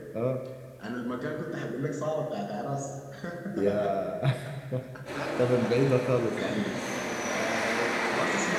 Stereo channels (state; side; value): identical; both; correlation 1.00